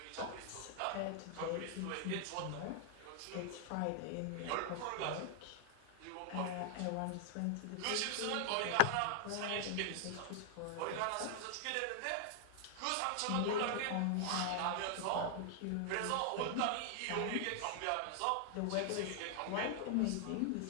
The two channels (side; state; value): both; different; correlation 0.00